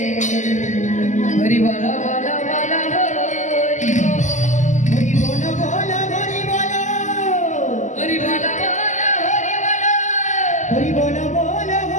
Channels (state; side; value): late; right; 0.35 ms